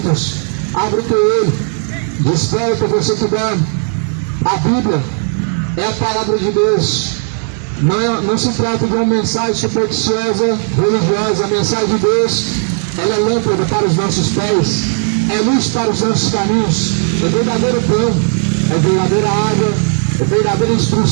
Abre o teu olho, desperta você que dá. A Bíblia é a palavra de Deus. Não se trata de uma mensagem supersticiosa, religiosa. A mensagem de Deus, ela é lâmpada para os nossos pés, é luz para os nossos caminhos, é verdadeiro pão, é verdadeira água, é verdadeira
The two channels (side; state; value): left; silent; 59 dB below the other